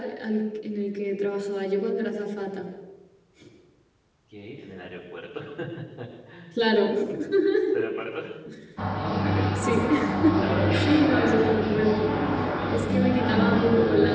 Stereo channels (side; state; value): both; identical; correlation 1.00